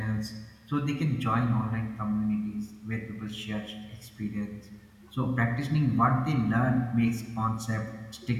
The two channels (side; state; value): both; identical; correlation 1.00